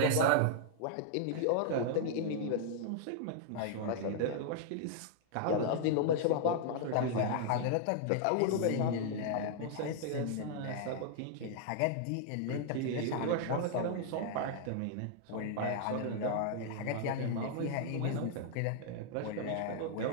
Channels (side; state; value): both; different; correlation -0.01